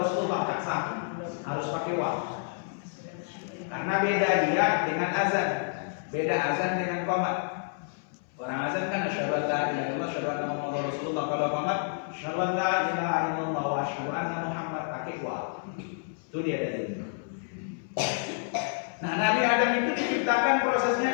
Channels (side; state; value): right; silent; 58 dB below the other